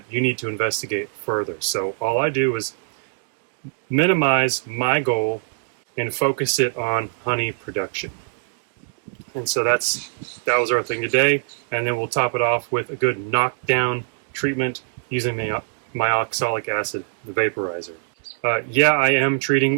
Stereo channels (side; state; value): left; silent; digital silence